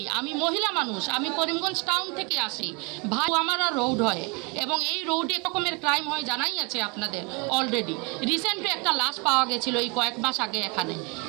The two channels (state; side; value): quieter; left; 31.0 dB